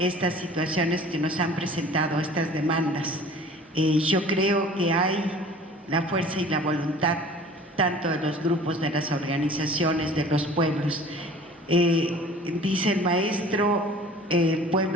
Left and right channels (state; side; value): normal; both; correlation 0.46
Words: situaciones que nos han presentado, estas demandas. Yo creo que hay la fuerza y la voluntad tanto de los grupos, de las organizaciones, de los pueblos. Dice el maestro,